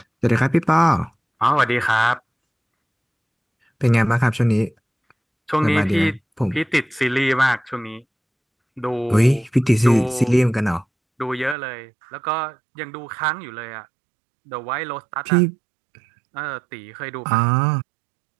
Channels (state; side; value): drops out; left; at 11.6 s